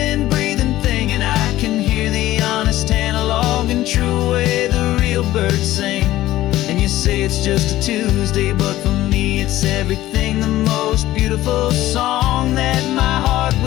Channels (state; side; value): quieter; right; 15.3 dB